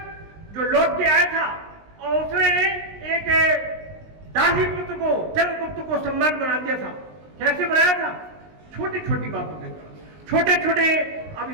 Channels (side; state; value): left; late; 19 ms